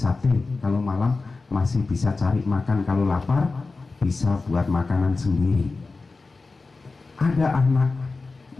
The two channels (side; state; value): right; quieter; 3.8 dB